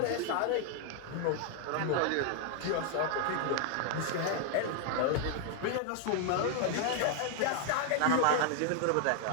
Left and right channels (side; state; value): both; different; correlation 0.00